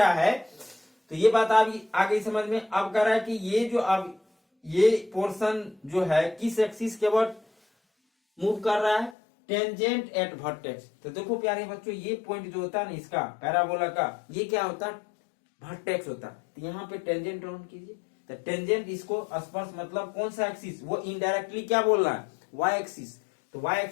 है, तो ये बात आ गई समझ में। अब कह रहा है कि ये जो अब ये पोर्शन जो है किस एक्सिस के अबाउट मूव कर रहा है, टेंजेंट एट वर्टेक्स। तो देखो प्यारे बच्चों ये पॉइंट जो होता है ना इसका पैराबोला का, ये क्या होता है वर्टेक्स होता है। तो यहाँ पे टेंजेंट ड्रॉ कीजिए, तो टेंजेंट इसको स्पर्श मतलब कौन सा एक्सिस, वो इनडायरेक्टली क्या बोल रहा है वाई एक्सिस। तो वाई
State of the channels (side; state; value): right; drops out; at 9.2 s